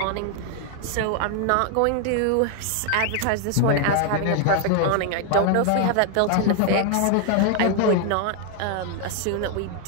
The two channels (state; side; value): different; both; correlation 0.00